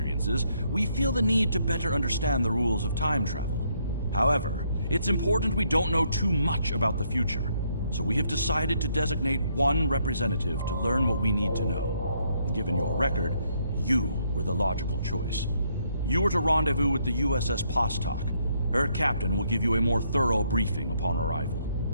we feel the need to better understand the rules of time travel. However, it's important we don't know too much about the future, so we have decided to designate one representative to learn what we need to know. Given your record, you were the logical choice. You are to rendezvous with the USS Postok. Her captain will give you a more thorough briefing upon arrival.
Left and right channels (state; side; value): inverted; both; correlation -0.72